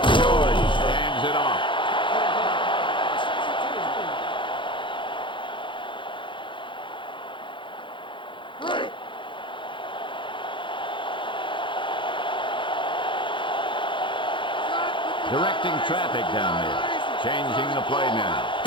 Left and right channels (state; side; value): late; right; 0.24 ms